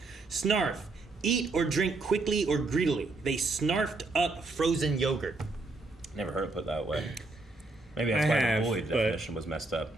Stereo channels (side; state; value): left; quieter; 3.3 dB